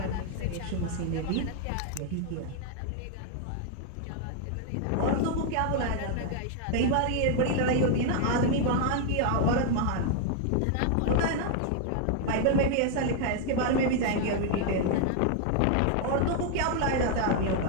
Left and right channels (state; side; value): different; both; correlation 0.00